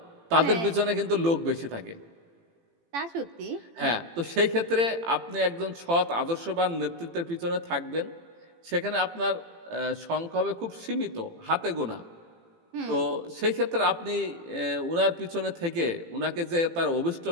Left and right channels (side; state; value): left; late; 18 ms